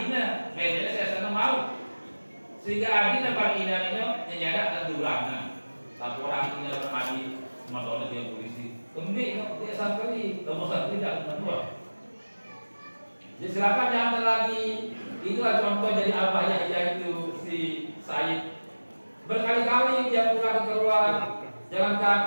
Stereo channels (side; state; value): both; inverted; correlation -1.00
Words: bedanya saya sana mau sehingga adina bagi ina itu nyada terdulang laporan ini bermadi motornya dia polisi kemudian dia santri kamu santri tidak menua jadi silakan jangan lagi itulah contoh jadi apa ya yaitu si Said berkali-kali dia pulang keluar jalan